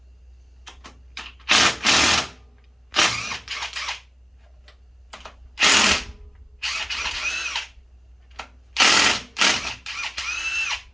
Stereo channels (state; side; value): identical; both; correlation 1.00